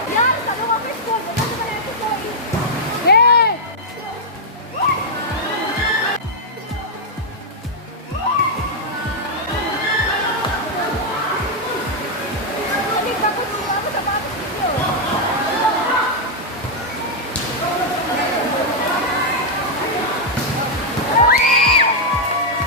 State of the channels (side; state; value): both; normal; correlation -0.04